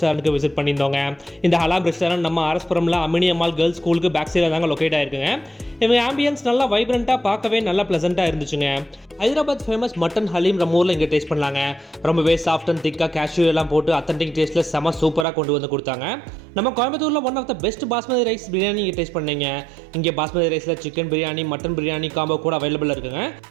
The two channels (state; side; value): drops out; left; at 15.2 s